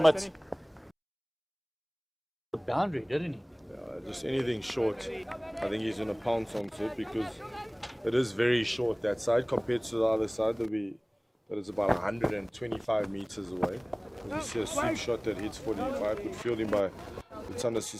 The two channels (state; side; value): identical; both; correlation 1.00